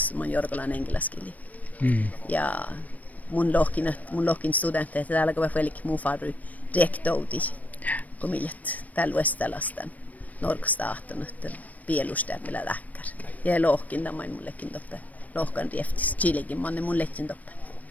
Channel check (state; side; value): late; right; 0.074 ms